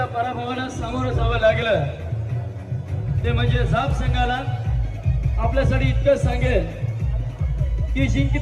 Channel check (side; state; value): both; identical; correlation 1.00